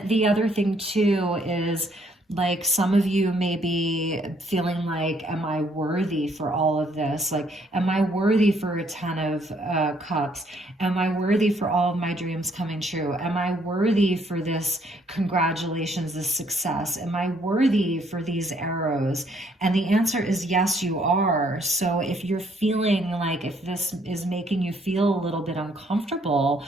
the other thing too is, like, some of you may be feeling like, am I worthy for all of this? Like, am I worthy for a 10 of cups? Am I worthy for all of my dreams coming true? Am I worthy for this congratulations, this success? Am I worthy for these arrows? And the answer is yes, you are. So if you're feeling like, if this is making you feel a little bit uncomfortable,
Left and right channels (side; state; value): both; normal; correlation 0.67